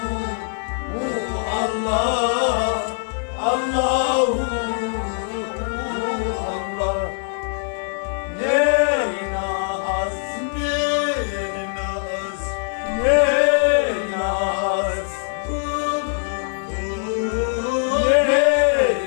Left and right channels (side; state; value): right; silent; digital silence